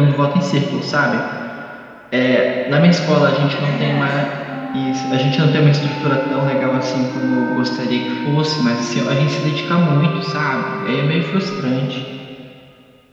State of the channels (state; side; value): identical; both; correlation 1.00